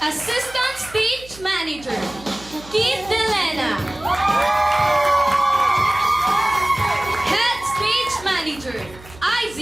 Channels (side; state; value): right; noise; hum, 20 dB below the sound